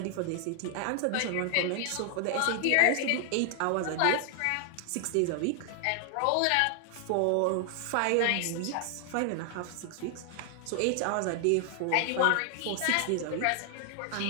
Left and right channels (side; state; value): both; different; correlation 0.00